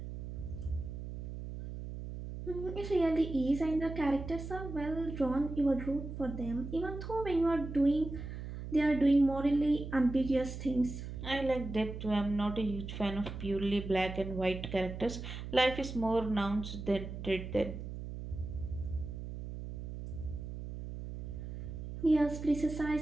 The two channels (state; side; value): noise; right; hum, 8 dB below the sound